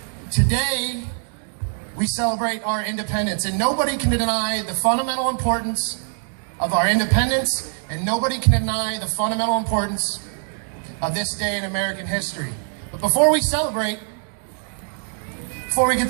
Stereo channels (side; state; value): left; silent; digital silence